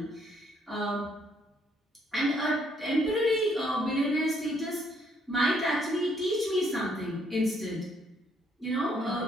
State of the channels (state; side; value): normal; both; correlation 0.69